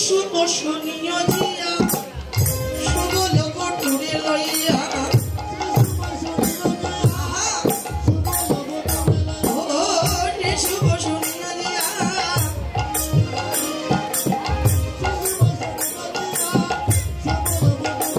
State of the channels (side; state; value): both; identical; correlation 1.00